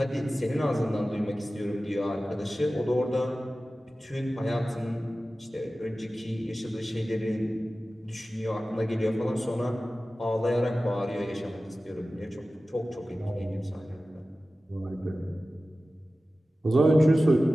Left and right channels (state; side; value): normal; both; correlation 0.96